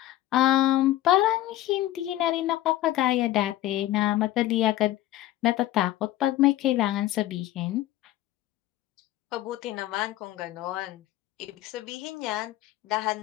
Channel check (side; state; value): right; quieter; 14.9 dB